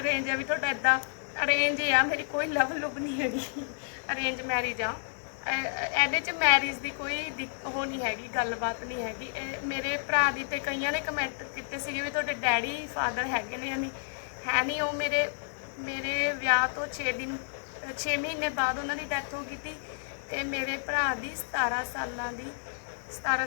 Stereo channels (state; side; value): silent; right; 57 dB below the other